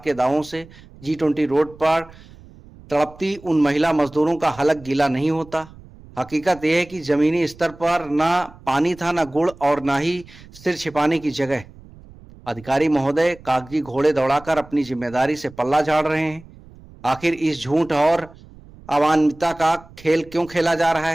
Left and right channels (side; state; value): right; noise; rumble, 22 dB below the sound